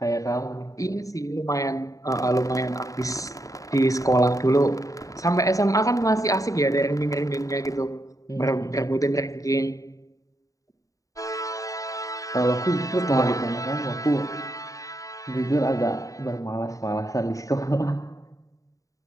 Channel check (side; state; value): right; late; 0.16 ms